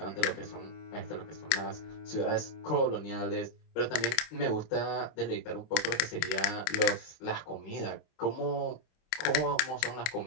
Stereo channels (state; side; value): late; right; 27 ms